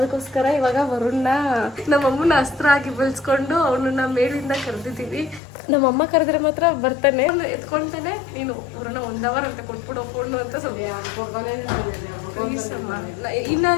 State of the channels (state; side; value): drops out; right; at 5.4 s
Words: ಇವಾಗ ವರುಣ್ನ ನಮ್ಮಮ್ಮನ ಅಸ್ತ್ರ ಆಗಿ ಬೆಳೆಸ್ಕೊಂಡು ಅವನನ್ನ ಮೇಲಿಂದ ಕರೆದಿದ್ದೀವಿ. ನಮ್ಮಮ್ಮ ಕರೆದ್ರೆ ಮಾತ್ರ ಬರ್ತಾನೆ, ಎತ್ಕೊಳ್ತಾನೆ. ನೀನು ವರುಣ 1 hour ಅಂತ ಕೊಟ್ಬಿಡೋ ಫೋನು ಅಂತ ಸ್ವಲ್ಪ